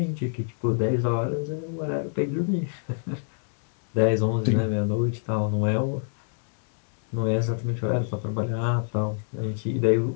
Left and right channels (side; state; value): right; silent; digital silence